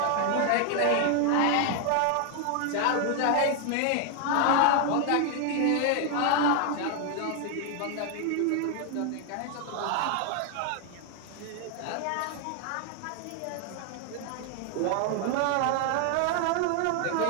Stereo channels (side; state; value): both; different; correlation 0.00